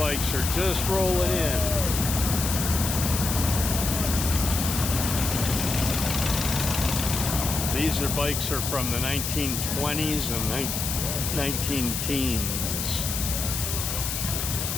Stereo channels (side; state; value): left; noise; hiss, 3 dB below the sound